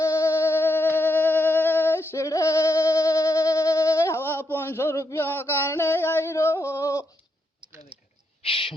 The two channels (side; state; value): both; normal; correlation 0.80